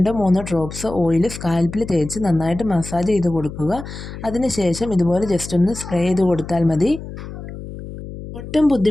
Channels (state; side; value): noise; left; hum, 11 dB below the sound